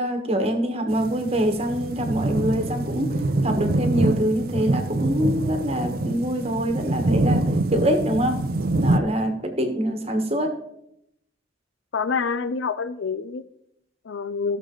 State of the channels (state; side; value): normal; both; correlation 0.62